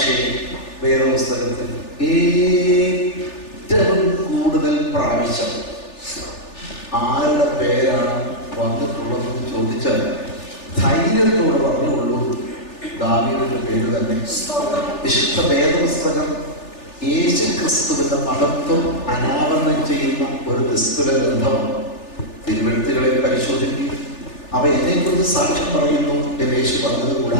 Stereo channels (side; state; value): right; late; 3.4 ms